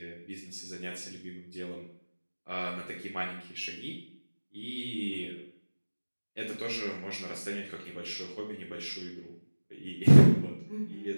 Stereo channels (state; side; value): inverted; both; correlation -1.00